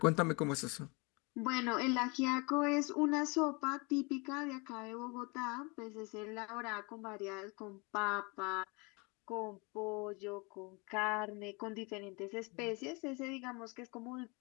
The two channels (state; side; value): quieter; right; 29.3 dB